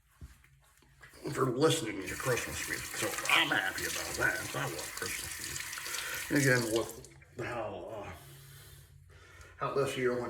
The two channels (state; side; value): identical; both; correlation 1.00